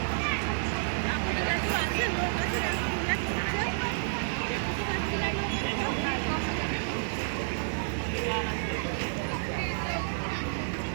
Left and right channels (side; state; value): left; silent; digital silence